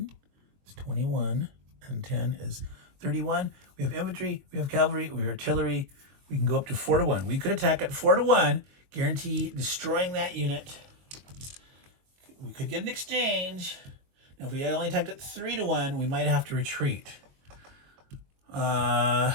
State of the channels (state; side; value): late; left; 22 ms